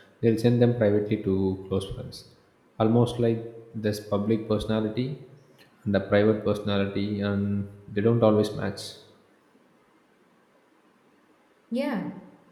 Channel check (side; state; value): both; identical; correlation 1.00